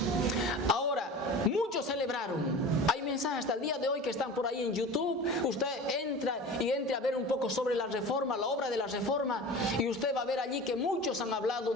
Ahora, muchos celebraron. Hay mensajes hasta el día de hoy que están por ahí en YouTube. Usted entre a ver un poco sobre la reforma, la obra de la reforma, y usted va a ver allí que muchos han hablado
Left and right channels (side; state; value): both; normal; correlation 0.35